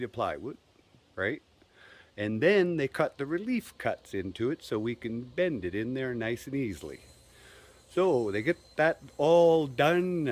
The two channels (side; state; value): both; identical; correlation 1.00